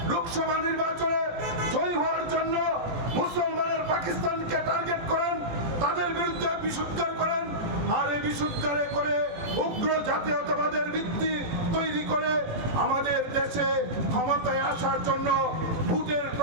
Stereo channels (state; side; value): late; left; 18 ms